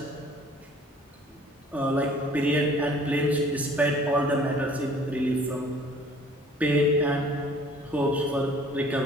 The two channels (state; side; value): normal; both; correlation 0.53